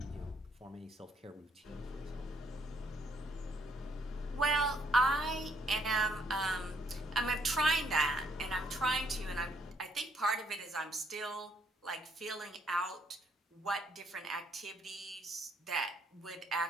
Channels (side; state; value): both; normal; correlation 0.69